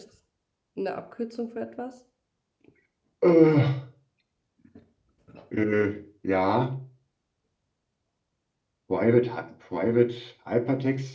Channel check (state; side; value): identical; both; correlation 1.00